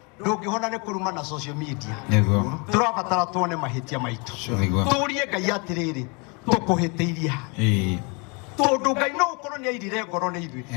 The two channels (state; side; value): quieter; right; 31.5 dB